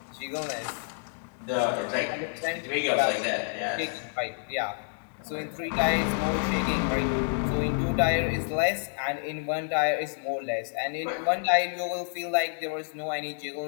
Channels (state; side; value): silent; right; digital silence